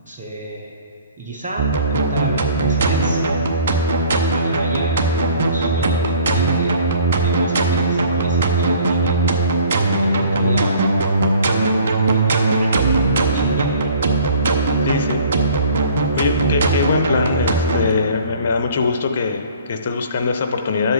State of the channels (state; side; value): inverted; both; correlation -0.52